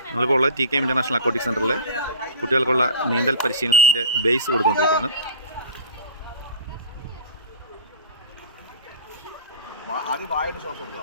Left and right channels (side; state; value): both; inverted; correlation -0.37